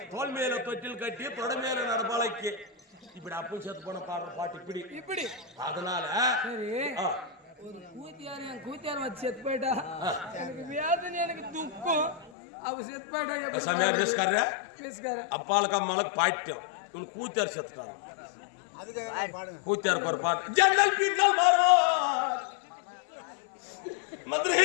தோல் மேல தொட்டில் கட்டி தொட மேல நடப்பாளைக்கு இப்படி அப்பும் செத்து போன பாடுற பாட்டு இப்படி இப்படி அதனால சரி ஒரு கூத்தியார் என் கூத்தியார் வச்சு செத்து போயிட்டா எனக்கு வேதனை எனக்கு துக்கம் அவ செத்து போயிட்டா சமையல் ரிஸ்கார பேசுக்காரு அப்பாளுக்கு அம்மாளுக்கு பாயிட்டோம் இவனு கூத்தியார் செத்துட்டாங்க கூத்தியாருக்கு ஒரு பாட்டு ஜன்னல் பின்னல் மாறும் மதுரை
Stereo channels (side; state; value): right; drops out; at 12.3 s